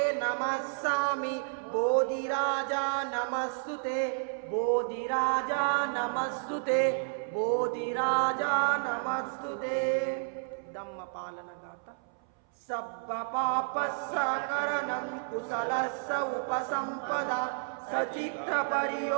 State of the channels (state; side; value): silent; left; 57 dB below the other